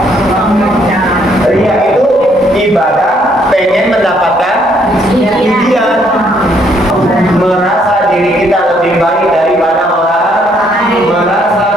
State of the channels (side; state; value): both; normal; correlation 0.68